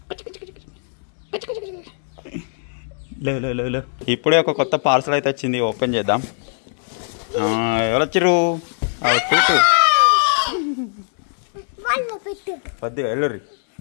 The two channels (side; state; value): right; silent; digital silence